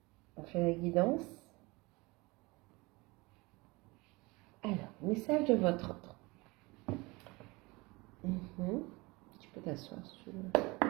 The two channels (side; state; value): left; quieter; 24.2 dB